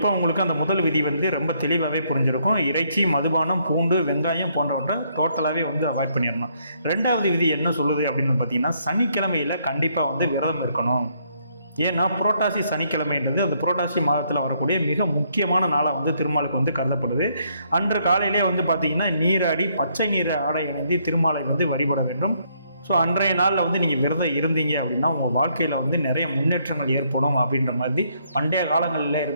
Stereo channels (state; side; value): inverted; both; correlation -0.71